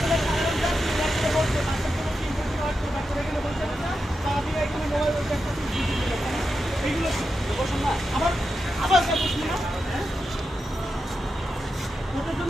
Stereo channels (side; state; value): both; normal; correlation 0.88